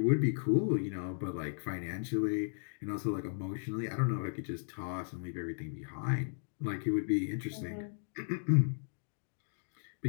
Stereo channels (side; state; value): right; silent; digital silence